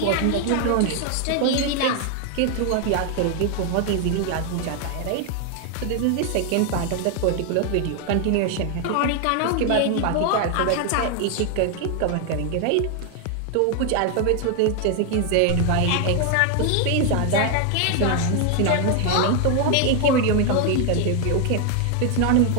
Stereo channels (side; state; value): both; different; correlation 0.01